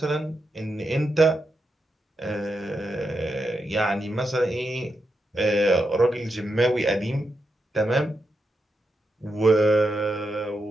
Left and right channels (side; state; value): both; normal; correlation 0.85